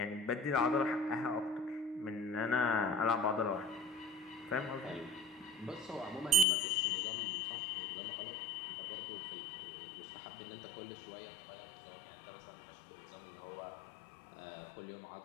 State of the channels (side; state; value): right; drops out; at 6.5 s